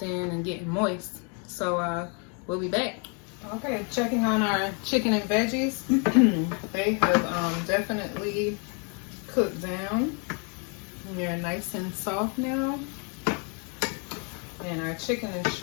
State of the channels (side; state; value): right; quieter; 37.4 dB